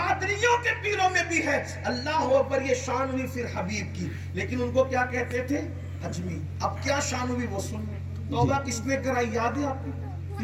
کے پیروں میں بھی ہے. اللہ اکبر, یہ شان ہوئی پھر حبیب کی. لیکن ان کو کیا کہتے تھے؟ اجمی. اب کیا شان ہوئی وہ سن. توبہ کس نے کرائی یاد ہے آپ کو؟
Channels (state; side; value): identical; both; correlation 1.00